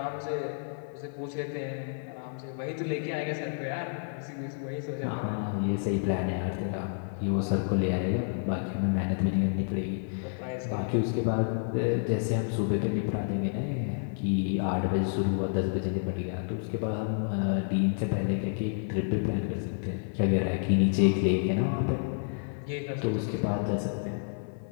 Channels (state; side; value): silent; right; 55 dB below the other